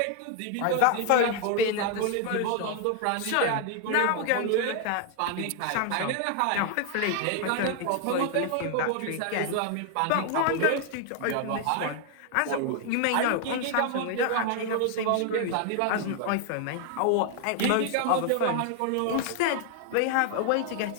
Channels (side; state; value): both; different; correlation 0.00